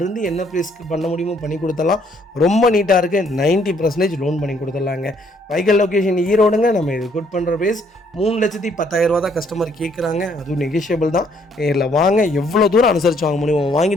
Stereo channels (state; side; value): normal; both; correlation 0.66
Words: என்ன ப்ரைஸ்க்கு பண்ண முடியுமோ பண்ணி கொடுத்துடலாம். ரொம்ப நீட்டாக இருக்குது. 90% லோன் பண்ணி கொடுத்துடலாங்க. வெஹிக்கிள் லொக்கேஷன் ஈரோடுங்க. நம்ம இது கோட் பண்ணுற ப்ரைஸ் 3,10,000 தான் கஸ்டமர் கேட்குறாங்க. அதுவும் நெகோஷியபிள் தான். நேரில் வாங்க, எவ்வளோ தூரம் அனுசரித்து வாங்க முடியுமோ